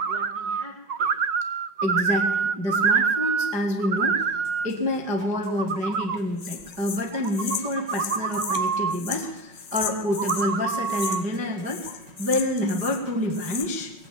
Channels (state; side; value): late; left; 5.3 ms